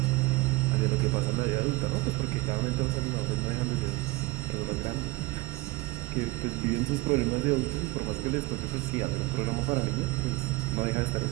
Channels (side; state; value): left; quieter; 20.8 dB